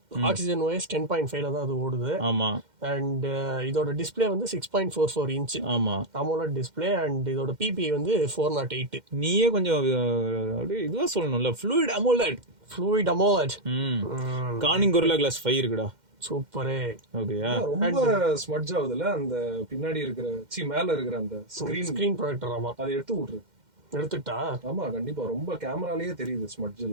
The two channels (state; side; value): late; left; 2.1 ms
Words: ஆக்சிஜன் OS 10.5ல தான் அது ஓடுது. ஆமா, அண்ட் இதோட டிஸ்பிளே வந்து 6.44 இன்ச். ஆமா, AMOLED டிஸ்பிளே. அண்ட் இதோட PPI வந்து 408. நீயே கொஞ்சம் அப்படியே இதுவா சொல்லணும்ல, fluid AMOLED. Corning Gorilla Glass 5 இருக்குடா. சூப்பரே. ஓகேயா, ரொம்ப ஸ்மட்ஜ் ஆகுதுல அந்த பின்னாடி இருக்கிற மேல இருக்கிற அந்த ஸ்கிரீன் ப்ரொஜெக்டர். ஆமா, அதை எடுத்துட்டா. ஆமா, கண்டிப்பா ரொம்ப கேமராலயே தெரியுது ஸ்மட்ஜ்